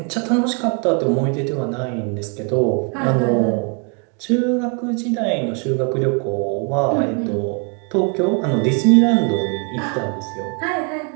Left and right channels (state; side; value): quieter; left; 35.8 dB